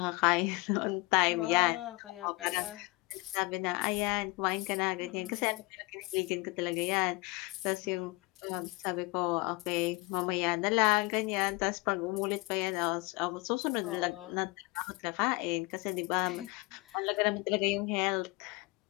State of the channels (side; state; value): right; quieter; 24.5 dB